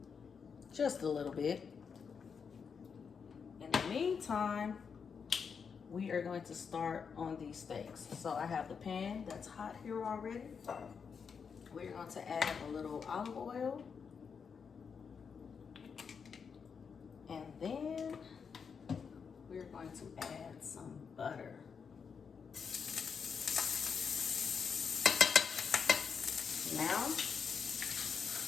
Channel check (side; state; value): right; quieter; 6.2 dB